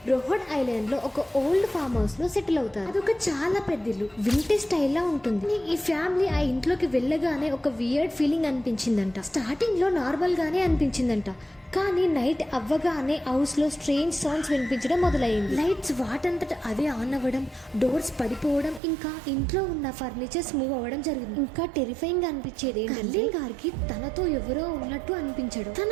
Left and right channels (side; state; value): left; drops out; at 18.8 s